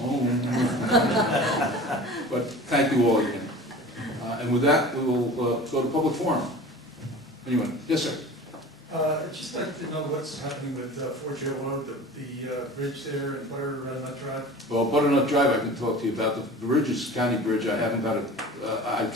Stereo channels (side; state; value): both; normal; correlation 0.39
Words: home. But thank you all again. And with that, we will go to public forum. Anyone? Yes, sir. I'd just like to know what's happening with Fort Joe Road, the bridge there and Butternut Drive. Well, Butternut Drive I can talk to you about. The bridge is a county bridge. I haven't got it. I